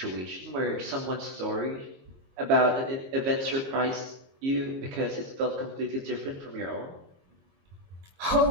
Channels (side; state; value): left; late; 22 ms